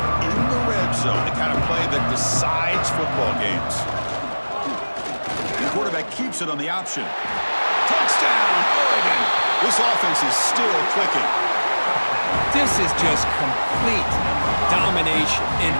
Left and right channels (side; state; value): both; inverted; correlation -1.00